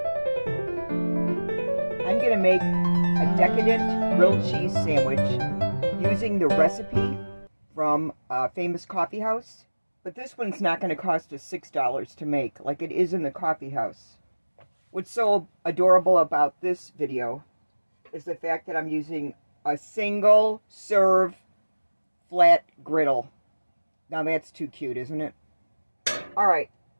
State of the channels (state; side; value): inverted; both; correlation -1.00